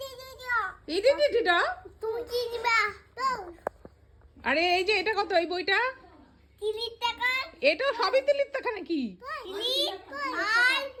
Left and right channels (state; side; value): identical; both; correlation 1.00